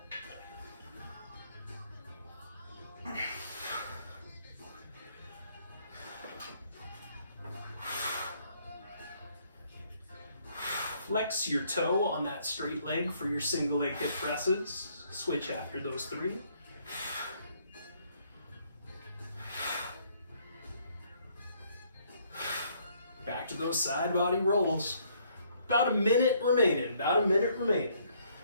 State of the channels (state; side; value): inverted; both; correlation -0.66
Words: Flex your toe on that straight leg for your single leg hip presses. Switch after those 3. those side body rolls. About a minute remaining, about a minute remaining.